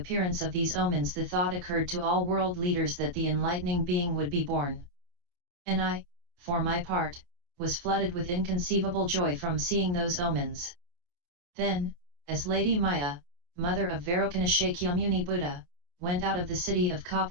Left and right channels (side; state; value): left; late; 28 ms